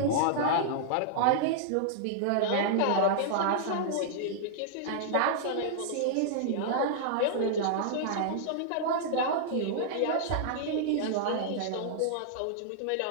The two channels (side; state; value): both; different; correlation -0.02